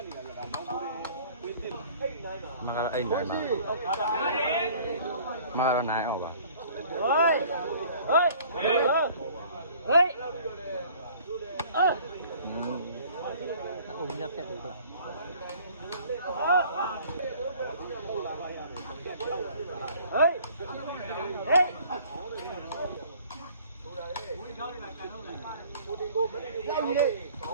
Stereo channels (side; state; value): both; inverted; correlation -0.52